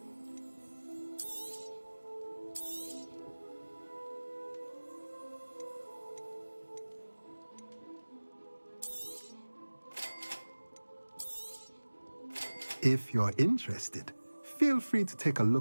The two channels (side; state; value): both; inverted; correlation -1.00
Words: If you're interested, feel free to take a